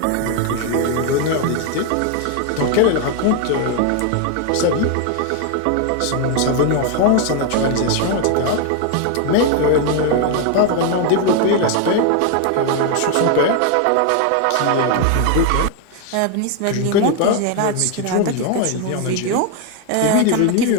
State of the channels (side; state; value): both; different; correlation 0.01